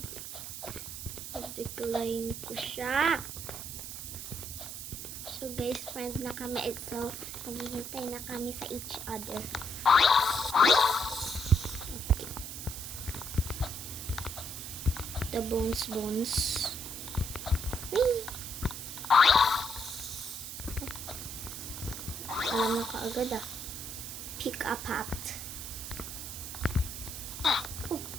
Na-decline ko siya. So guys, friend na kami. So, naghihintay na kami sa each other. Okay. The bones. Whee! Alam na kaagad ah. Pick a path. Oh.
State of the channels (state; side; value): noise; right; hiss, 8 dB below the sound